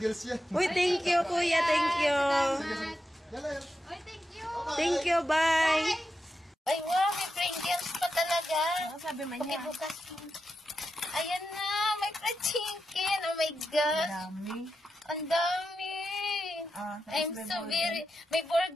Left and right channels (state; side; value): normal; both; correlation 0.88